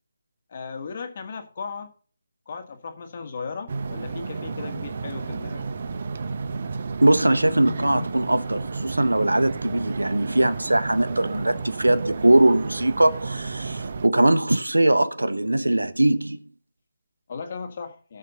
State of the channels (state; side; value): inverted; both; correlation -0.98